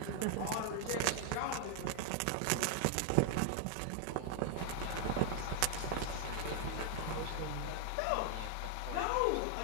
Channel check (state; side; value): different; both; correlation 0.00